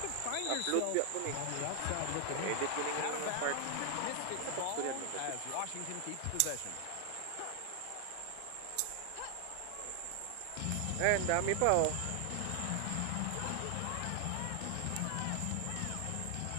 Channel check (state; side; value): different; both; correlation 0.00